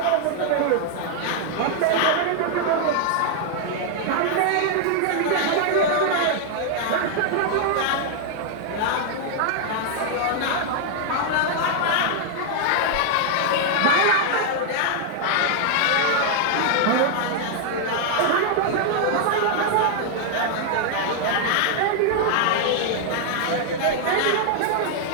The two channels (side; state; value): both; different; correlation 0.00